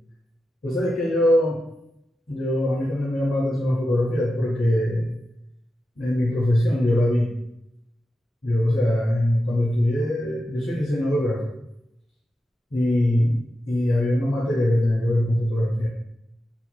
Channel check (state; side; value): normal; both; correlation 0.90